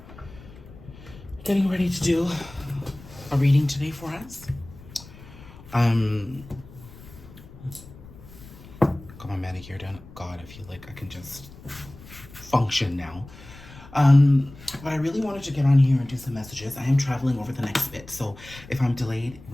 Getting ready to do a reading today for us. Got my manicure done. God, I feel like I can just function now. But I really wanted to get on here and do some messages. I am traveling over the next bit, so if I'm delayed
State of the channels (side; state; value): left; noise; rumble, 19 dB below the sound